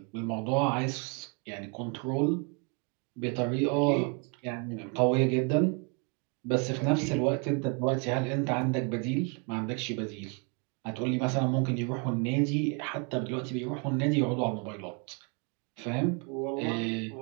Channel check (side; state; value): left; quieter; 35.7 dB